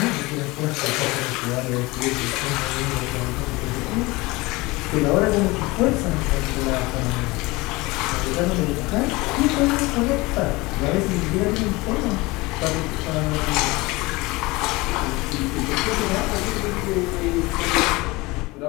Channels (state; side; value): quieter; right; 22.6 dB